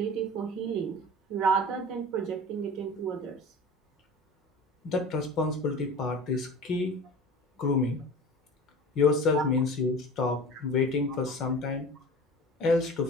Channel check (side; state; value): both; normal; correlation 0.37